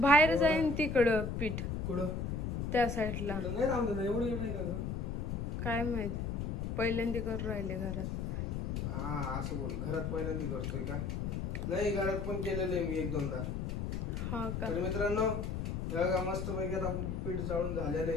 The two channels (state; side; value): noise; left; rumble, 2 dB below the sound